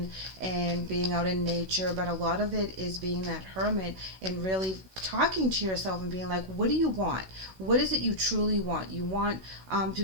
and being out in nature, but a lot of it is being that hermit and really talking to yourself and being like, what do you want? What is it you truly want? You want to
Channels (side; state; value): left; late; 16 ms